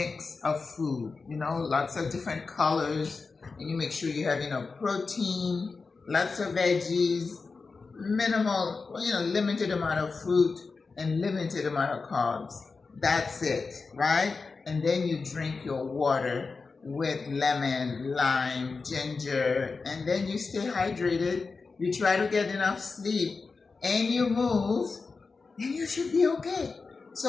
of food, lots of different colors, and you make sure you have enough protein, lots of veggies, minimal, limited amount of fruit, and limited amount of carbs. That's it, right? And then you drink your water with lemon, lime, ginger, and then you stay hydrated. You try to get enough sleep, and you move, and you should be okay.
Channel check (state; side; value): quieter; right; 4.4 dB